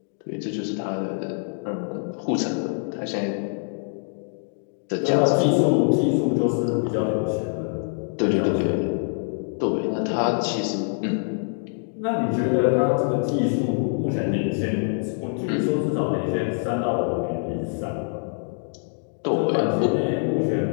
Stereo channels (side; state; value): right; silent; 62 dB below the other